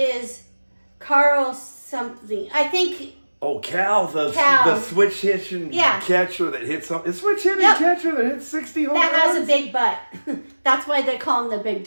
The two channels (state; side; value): inverted; both; correlation -1.00